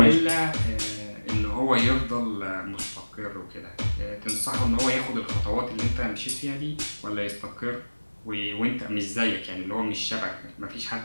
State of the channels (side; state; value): both; inverted; correlation -1.00